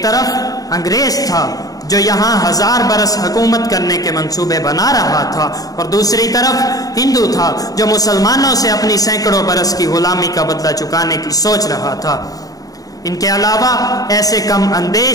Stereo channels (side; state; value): right; late; 0.18 ms